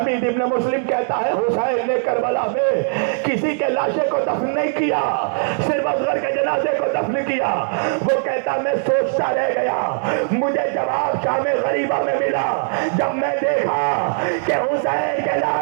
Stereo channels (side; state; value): left; silent; digital silence